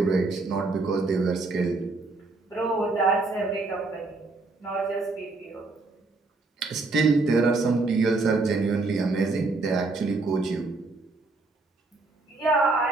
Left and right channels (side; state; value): left; quieter; 3.5 dB